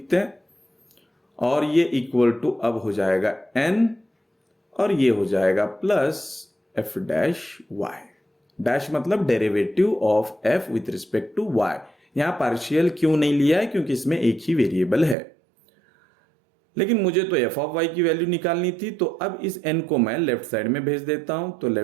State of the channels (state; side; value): drops out; left; at 15.2 s